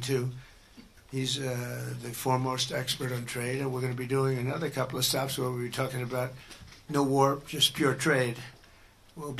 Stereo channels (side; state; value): both; identical; correlation 1.00